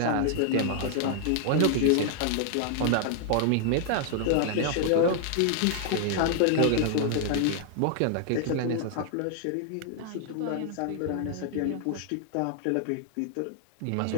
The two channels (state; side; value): different; both; correlation 0.00